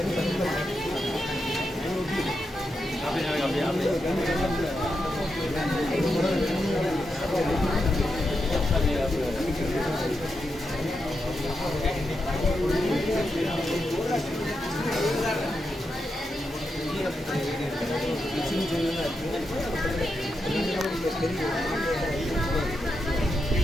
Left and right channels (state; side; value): normal; both; correlation 0.86